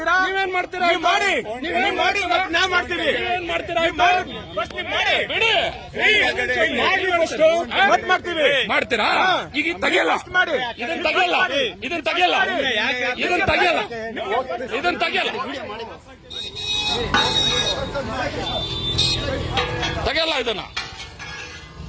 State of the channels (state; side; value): identical; both; correlation 1.00